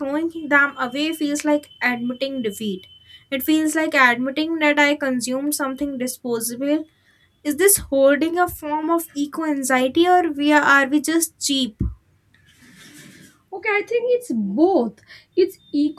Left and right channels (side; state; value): both; identical; correlation 1.00